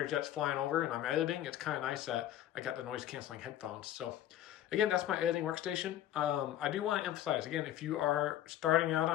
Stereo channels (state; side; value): quieter; right; 12.3 dB